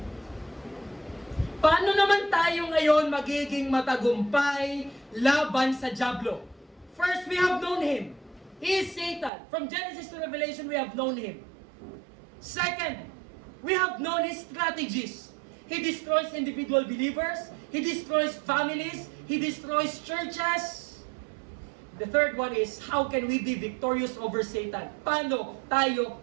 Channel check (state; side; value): drops out; left; at 9.3 s